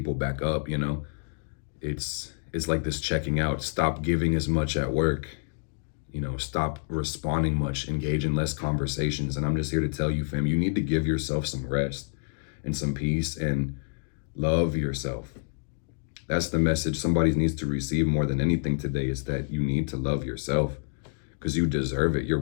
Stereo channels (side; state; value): right; silent; digital silence